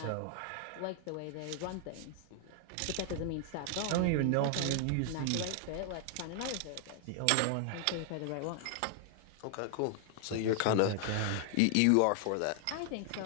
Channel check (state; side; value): different; both; correlation 0.00